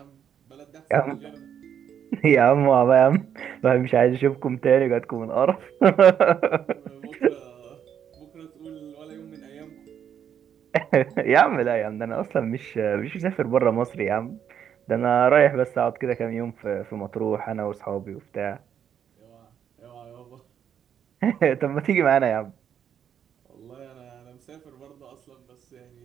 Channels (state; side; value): quieter; left; 8.7 dB